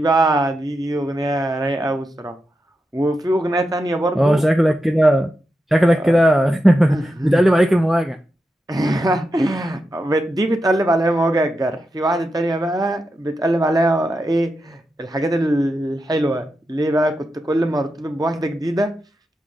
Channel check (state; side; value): normal; both; correlation 0.88